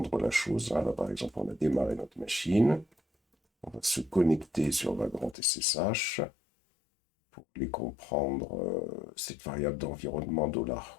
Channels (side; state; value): right; drops out; at 5.4 s